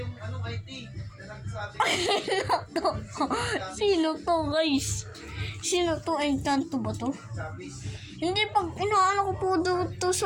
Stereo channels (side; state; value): both; identical; correlation 1.00